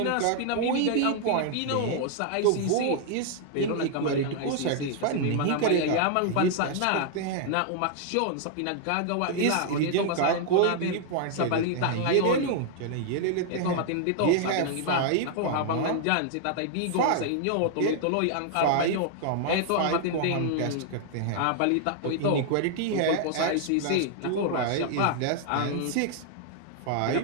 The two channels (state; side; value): different; both; correlation 0.00